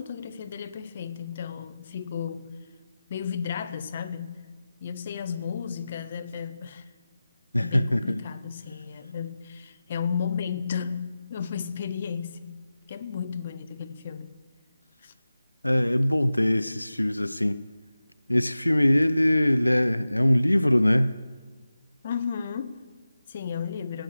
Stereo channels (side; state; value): both; inverted; correlation -0.95